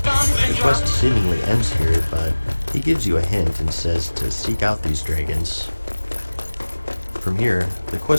The quest seemingly ends here, but he gives you a hint and says to seek out these dragons. From here, the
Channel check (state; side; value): inverted; both; correlation -1.00